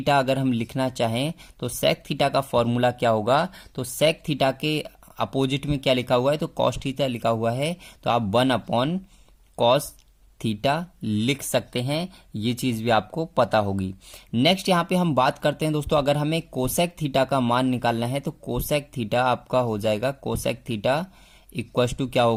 अगर हम लिखना चाहें, तो सेक थीटा का फॉर्मूला क्या होगा, तो सेक थीटा के अपोजिट में क्या लिखा हुआ है, तो कॉस थीटा लिखा हुआ है, तो आप 1 अपॉन कॉस थीटा लिख सकते हैं, ये चीज भी आपको पता होगी। नेक्स्ट यहाँ पे हम बात करते हैं दोस्तों, अगर हमें कोसेक थीटा का मान निकालना है, तो कोसेक थीटा आपका हो जाएगा, कोसेक थीटा इक्वस टू क्या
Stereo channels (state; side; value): identical; both; correlation 1.00